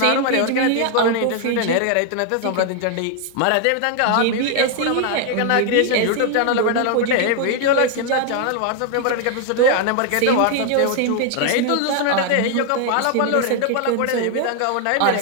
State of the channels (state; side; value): different; both; correlation 0.00